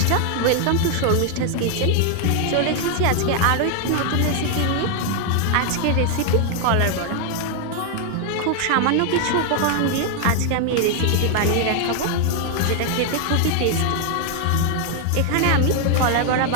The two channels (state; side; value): different; both; correlation 0.00